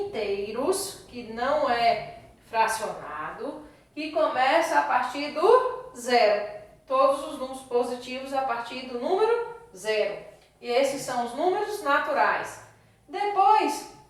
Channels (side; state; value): both; identical; correlation 1.00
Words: que não é fracionado, que começa a partir do zero. Todos os números positivos a partir do número zero. E esses são os números naturais. Depois,